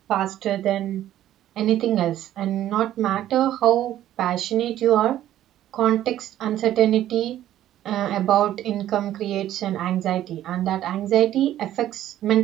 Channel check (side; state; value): left; quieter; 12.6 dB